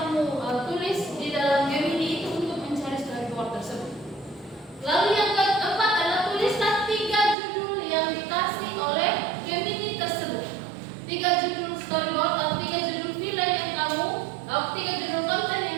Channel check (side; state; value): left; drops out; at 7.4 s